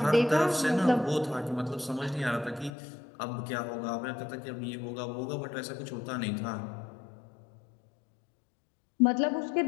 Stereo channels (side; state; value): right; drops out; at 2.7 s